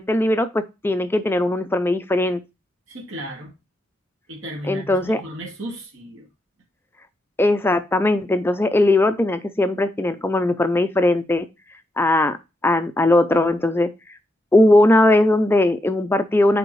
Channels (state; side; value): normal; both; correlation 0.83